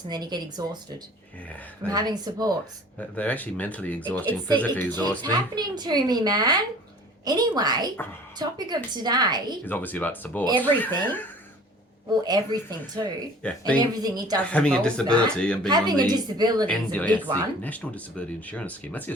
and then you get exhausted. Yeah. From having supports. They're actually mentally exhausting, physically exhausting. It's happening to me, man. Anyway, topic of today is obviously about support. Everything. Well, everything too. Yeah, and everything it does. Having a disability and being having on a the disability is a big one. National Disability Insurance Scheme. That's the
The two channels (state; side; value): normal; both; correlation 0.47